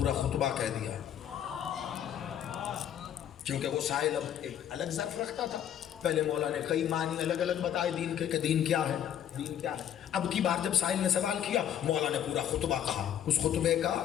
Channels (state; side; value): quieter; right; 10.0 dB